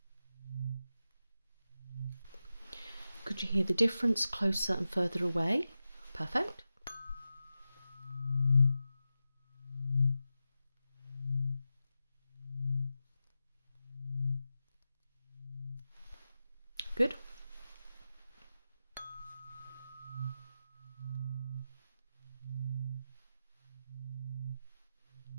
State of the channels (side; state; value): both; inverted; correlation -0.92